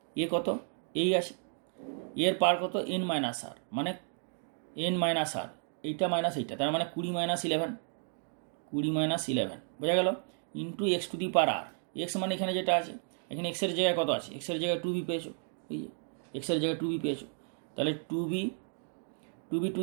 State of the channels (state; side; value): silent; left; 56 dB below the other